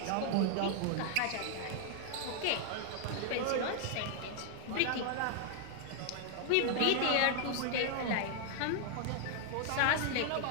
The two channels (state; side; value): different; both; correlation 0.00